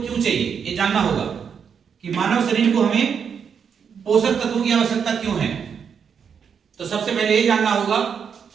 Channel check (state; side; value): quieter; left; 7.0 dB